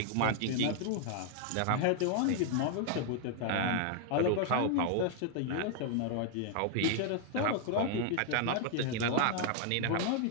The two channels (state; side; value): different; both; correlation 0.00